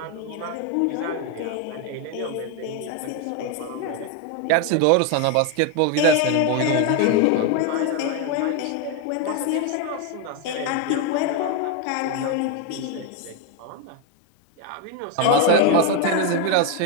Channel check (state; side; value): different; both; correlation 0.02